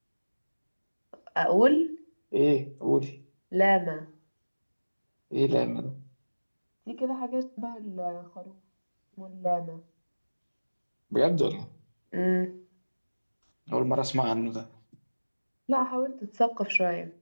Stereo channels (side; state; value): both; inverted; correlation -1.00